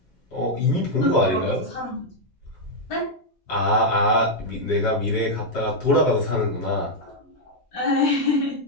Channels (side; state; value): both; normal; correlation -0.01